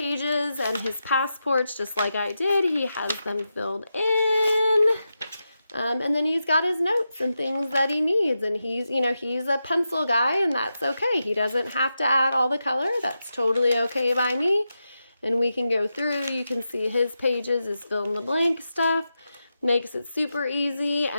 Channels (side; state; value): both; inverted; correlation -0.89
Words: and his passports, just like I did. He has them filled in, and then he's got his notes and things that he needs, and he's a pencil guy, and that's okay. He doesn't have to add all the color. That's totally okay by me, and we can go through. You can see his pages, his fill in the blank stuff. Makes it super easy.